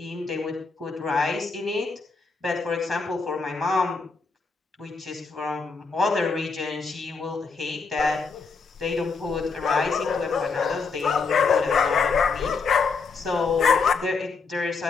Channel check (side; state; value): right; quieter; 4.7 dB